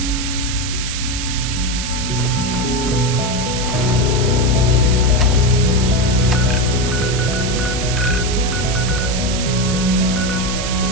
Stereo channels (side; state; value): right; noise; hiss, 5 dB below the sound